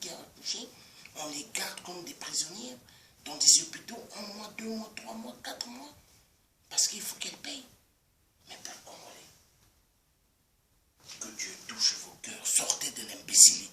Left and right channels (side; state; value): both; identical; correlation 1.00